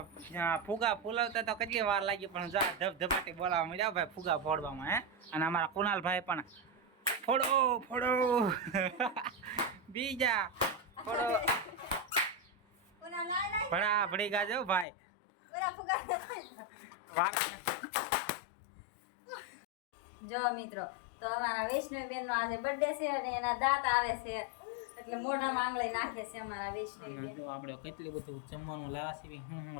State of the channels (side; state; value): right; drops out; at 14.9 s